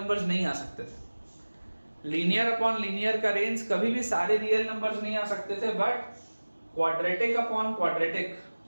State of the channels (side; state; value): both; inverted; correlation -1.00